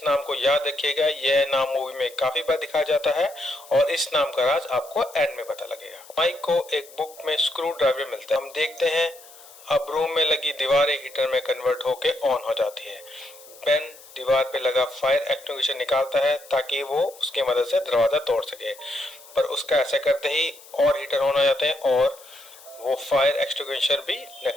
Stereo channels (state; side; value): noise; left; hiss, 21 dB below the sound